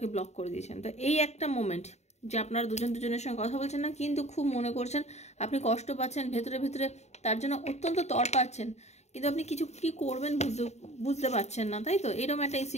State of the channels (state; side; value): late; right; 0.32 ms